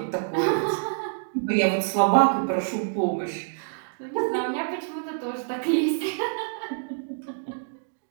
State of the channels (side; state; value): left; silent; digital silence